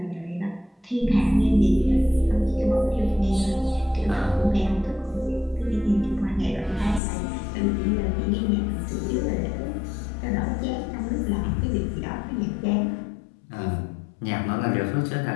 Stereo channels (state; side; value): drops out; right; at 7.0 s